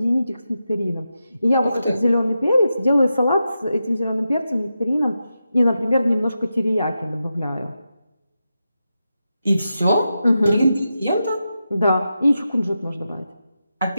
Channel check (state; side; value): inverted; both; correlation -0.89